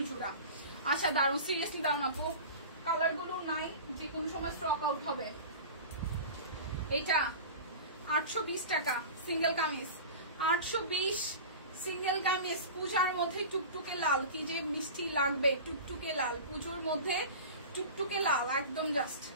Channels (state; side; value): inverted; both; correlation -0.34